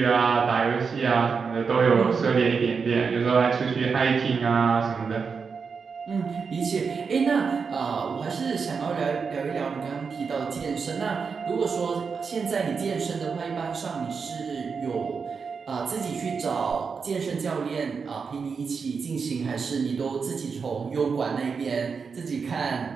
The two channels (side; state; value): left; quieter; 5.5 dB